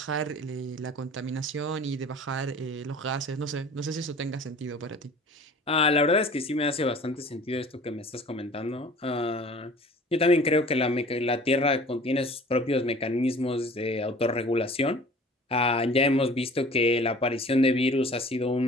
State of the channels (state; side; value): normal; both; correlation 0.46